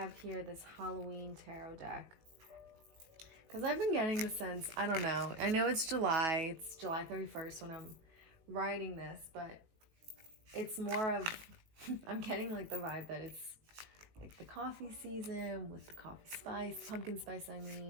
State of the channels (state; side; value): late; left; 18 ms